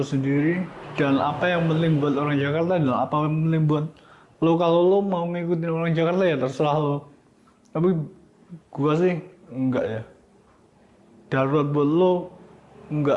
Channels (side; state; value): both; identical; correlation 1.00